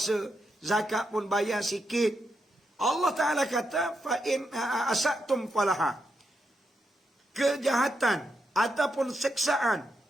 zakat pun bayar sikit. Allah Ta'ala kata, fa in asatum falaha. Kejahatan ataupun seksaan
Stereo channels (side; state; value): both; normal; correlation 0.83